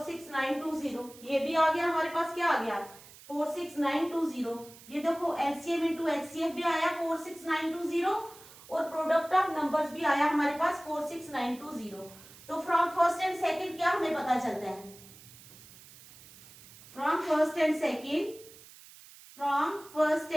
ये भी आ गया हमारे पास। क्या आ गया? 46920। ये देखो एलसीएम इंटू एचसीएफ भी आया 46920 और प्रोडक्ट ऑफ नंबर्स भी आया हमारे पास 46920। तो फ्रॉम फर्स्ट एंड सेकंड क्या हमें पता चलता है? From first and second, from first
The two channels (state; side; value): noise; right; hiss, 20 dB below the sound